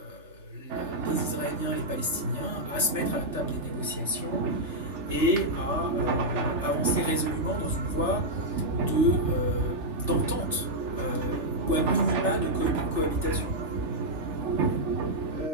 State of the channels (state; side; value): late; left; 3.3 ms